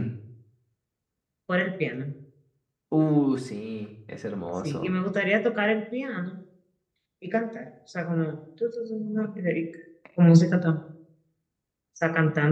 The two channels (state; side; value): identical; both; correlation 1.00